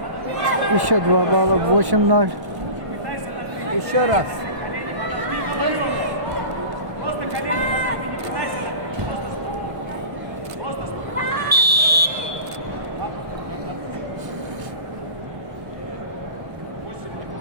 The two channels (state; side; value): late; left; 1.0 ms